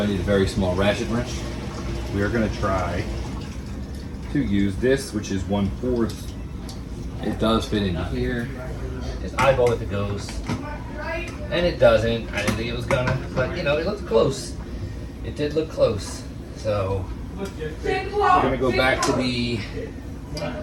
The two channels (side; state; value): both; identical; correlation 1.00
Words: I need a very small ratchet wrench. We are going to try to use this, which is 1/4. It does fit in here. Just eyeball if it goes. And it doesn't. I didn't think it was gonna, but you know, it looked close. It did look close. So we're gonna go back to the,